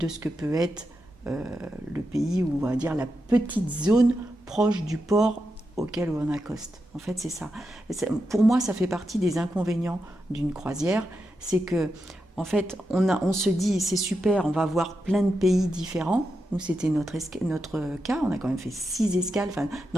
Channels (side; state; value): both; normal; correlation 0.87